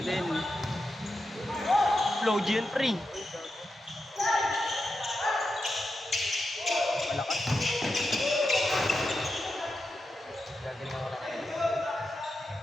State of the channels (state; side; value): normal; both; correlation 0.88